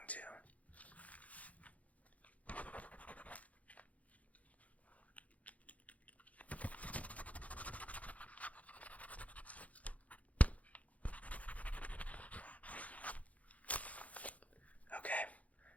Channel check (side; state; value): right; late; 0.069 ms